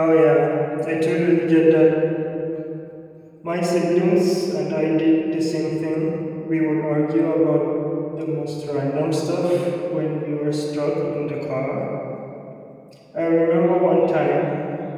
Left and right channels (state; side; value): identical; both; correlation 1.00